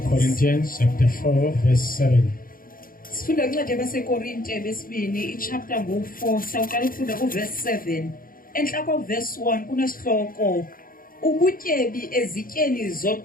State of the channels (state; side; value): late; right; 0.41 ms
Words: Corinthians chapter 4 verse 7. Sifunda incwadi yabasekorinte besibini ichapter ngo-4 sawuqala ukufunda kuverse 7. Enhla koverse 1 kunesihloko ubutyebi ezityeni